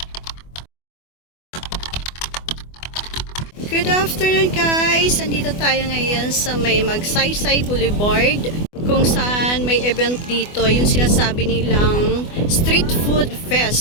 Good afternoon guys! Andito tayo ngayon sa may Magsaysay Boulevard kung saan may event dito, yung sinasabi nilang Street Food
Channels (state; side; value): late; right; 24 ms